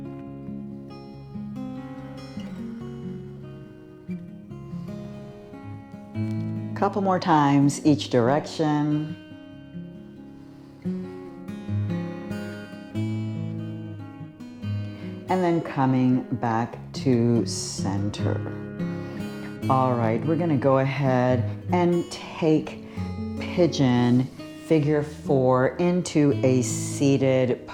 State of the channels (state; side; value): identical; both; correlation 1.00